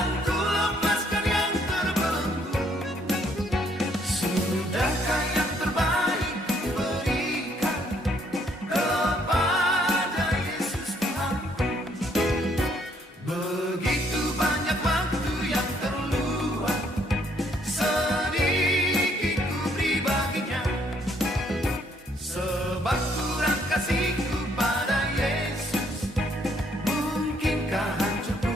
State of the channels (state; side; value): normal; both; correlation 0.68